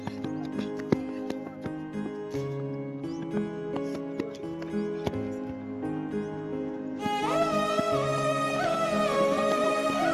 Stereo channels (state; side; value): identical; both; correlation 1.00